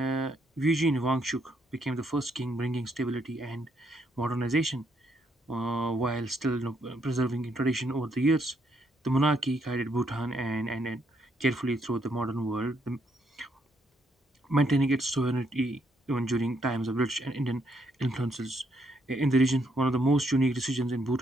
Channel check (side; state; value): both; normal; correlation 0.74